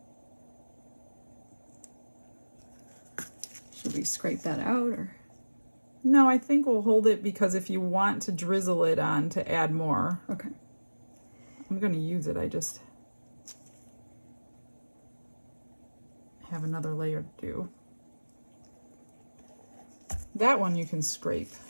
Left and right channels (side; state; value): both; inverted; correlation -1.00